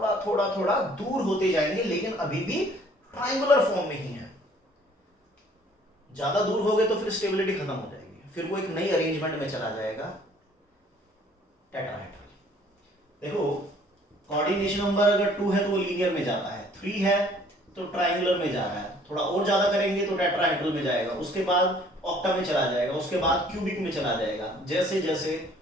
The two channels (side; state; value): both; normal; correlation 0.57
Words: थोड़ा थोड़ा दूर होते जाएंगे, लेकिन अभी भी ट्रायंगुलर फॉर्म में ही है। ज्यादा दूर हो गए तो फिर स्टेबिलिटी खत्म हो जाएगी, फिर वो एक नई अरेंजमेंट में चला जाएगा, टेट्राहेड्रल। देखो कोऑर्डिनेशन नंबर अगर 2 है तो वो लीनियर में जाता है, 3 है तो ट्रायंगुलर में जा रहा है, थोड़ा और ज्यादा करेंगे तो टेट्राहेड्रल में जाएगा, उसके बाद ऑक्टा में चला जाएगा, उसके बाद क्यूबिक में चला जाएगा, जैसे जैसे